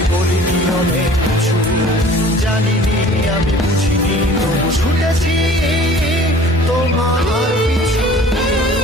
বলিনি অনেক কিছু, জানিনি আমি বুঝিনি তবু ছুটেছি তোমার পিছু।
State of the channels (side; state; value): both; normal; correlation 0.48